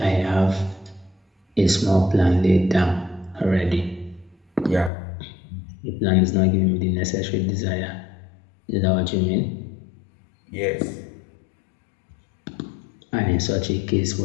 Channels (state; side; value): drops out; right; at 4.9 s